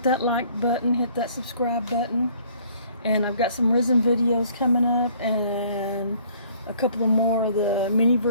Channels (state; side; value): inverted; both; correlation -0.59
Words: that like button, hit that subscribe button. And I've got some resin videos coming up and a couple of more of the